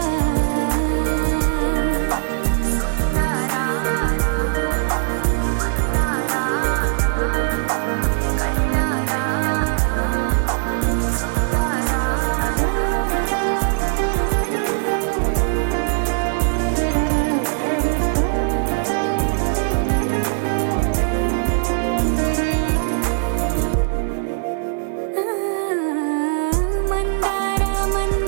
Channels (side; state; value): left; silent; 65 dB below the other